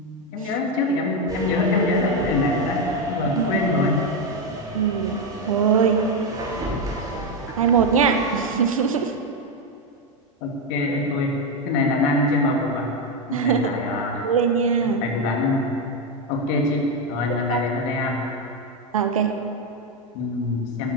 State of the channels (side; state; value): both; normal; correlation 0.07